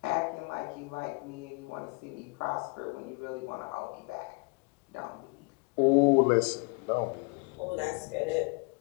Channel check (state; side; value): quieter; right; 30.7 dB